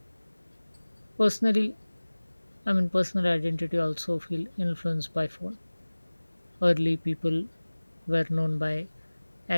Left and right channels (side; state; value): both; inverted; correlation -1.00